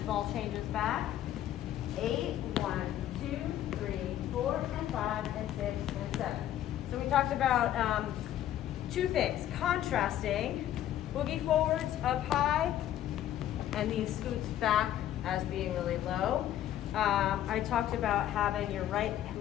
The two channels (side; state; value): right; quieter; 12.0 dB